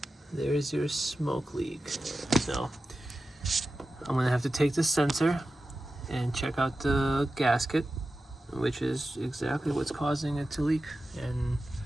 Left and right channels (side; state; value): both; normal; correlation 0.93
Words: There's your smoke leak. So I'm gonna have to take the sensor and check out the gasket, which is exactly what's causing it to leak, and